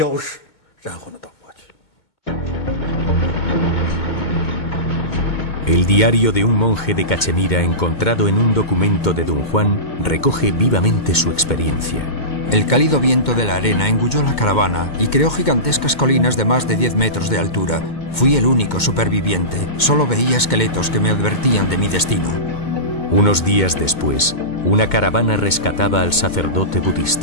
El diario de un monje de Cachemira encontrado en un documento de Don Juan recoge vivamente su experiencia. El cálido viento de la arena engulló la caravana y creó gigantescas colinas de más de 10 metros de altura. Fui el único superviviente. Solo veía esqueletos que me advertían de mi destino. Unos días después, una caravana rescataba al sacerdote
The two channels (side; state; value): right; late; 2.2 ms